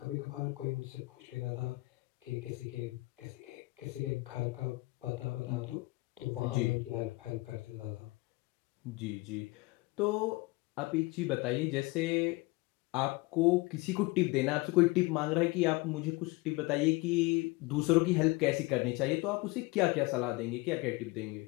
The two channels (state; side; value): quieter; right; 23.0 dB